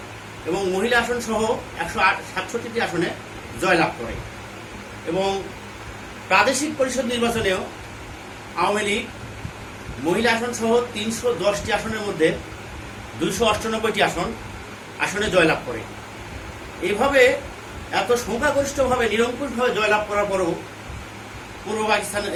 এবং মহিলা আসন সহ 167টি আসনে জয়লাভ করে এবং প্রাদেশিক পরিষদ নির্বাচনেও আওয়ামী লীগ মহিলা আসন সহ 310টি আসনের মধ্যে 298টি আসনে জয়লাভ করে। এইভাবে এত সংখ্যাগরিষ্ঠভাবে নিরঙ্কুশভাবে জয়লাভ করার পরেও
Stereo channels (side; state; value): both; identical; correlation 1.00